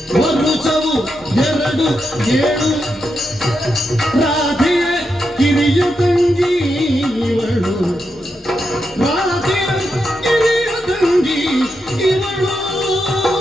ಮರುಚವು ಎರಡು ಏಳು ರಾಧೆಯ ಕಿರಿಯ ತಂಗಿ ಇವಳು ರಾಧೆಯ ಕಿರಿಯ ತಂಗಿ ಇವಳು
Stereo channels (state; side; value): normal; both; correlation 0.85